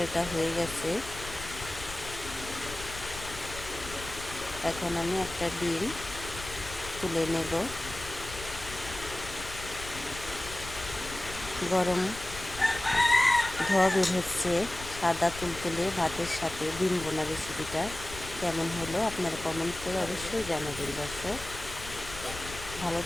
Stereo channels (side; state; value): left; noise; rumble, 12 dB below the sound